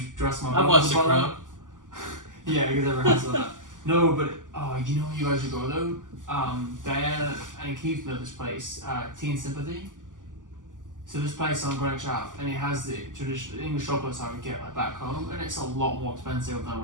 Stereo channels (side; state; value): left; late; 0.88 ms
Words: dress my. I've butter watched with The butter. Crown. Yeah, because everyone has that. No, but you know where you guys should go though. Diana and Keith know this place, Tea and Sympathy. So this place on Greenwich Ave, and it has the traditional English chocolates I would get like back home, and it's a lot more expensive than